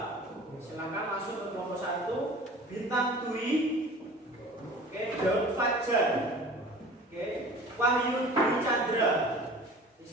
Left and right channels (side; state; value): both; normal; correlation 0.43